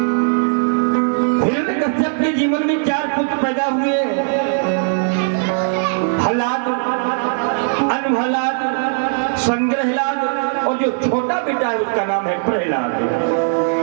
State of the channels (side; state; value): left; silent; digital silence